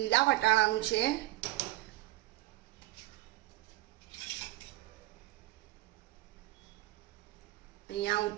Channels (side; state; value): left; quieter; 17.0 dB